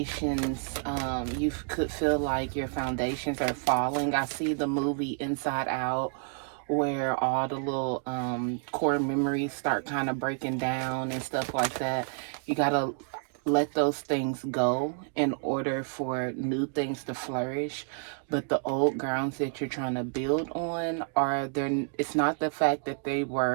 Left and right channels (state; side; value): silent; left; 57 dB below the other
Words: you could feel like your foundations are falling. I see the movie Inside Out where all the little core memories start kind of breaking down and stuff like that. You gotta let those things go in order for new things to flourish. But the old grounds that you're trying to build on are there. It's not the fact that they